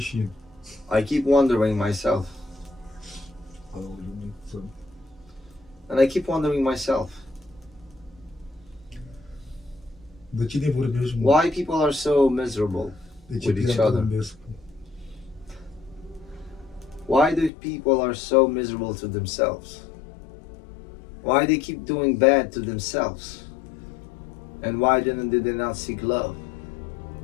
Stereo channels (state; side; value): drops out; right; at 17.5 s